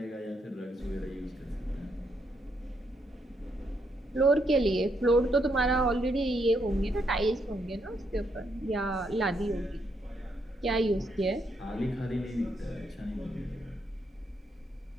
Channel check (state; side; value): normal; both; correlation 0.76